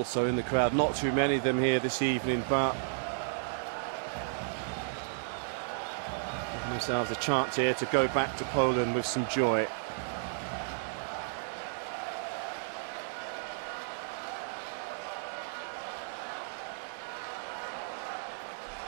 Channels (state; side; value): silent; left; digital silence